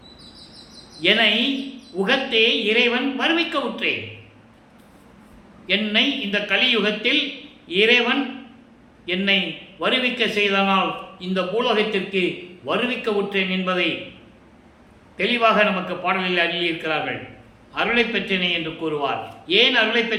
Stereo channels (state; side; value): identical; both; correlation 1.00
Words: என்னை உகத்தே இறைவன் வருவிக்க உற்றேன். என்னை இந்த கலியுகத்தில் இறைவன் என்னை வருவிக்க செய்தனால் இந்த பூலோகத்திற்கு வருவிக்க உற்றேன் என்பதை தெளிவாக நமக்கு பாடலில் அருளியிருக்கிறார்கள். அருளை பெற்றேனே என்று கூறுவார். ஏன் அருளை